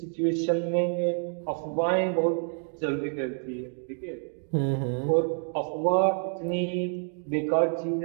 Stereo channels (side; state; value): left; silent; 57 dB below the other